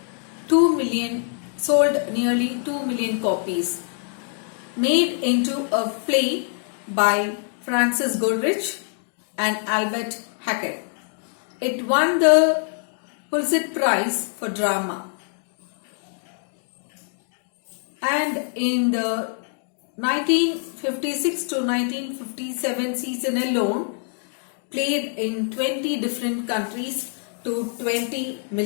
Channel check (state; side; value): silent; right; 55 dB below the other